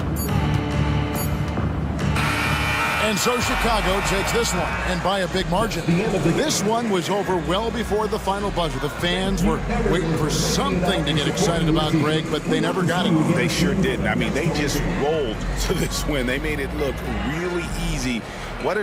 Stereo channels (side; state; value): both; identical; correlation 1.00